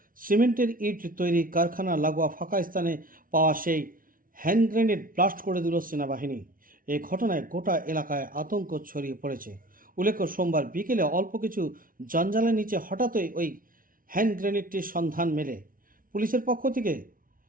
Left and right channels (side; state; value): left; late; 0.41 ms